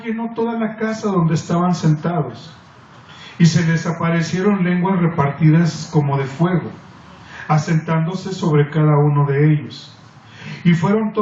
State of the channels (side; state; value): both; identical; correlation 1.00